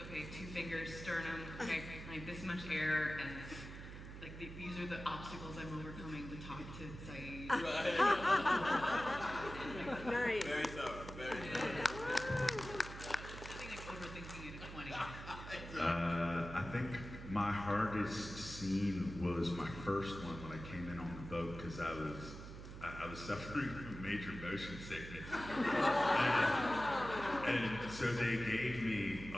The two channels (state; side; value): noise; right; hum, 11 dB below the sound